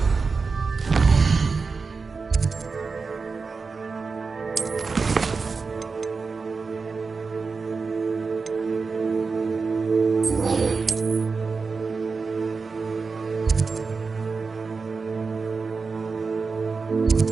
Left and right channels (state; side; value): quieter; left; 4.6 dB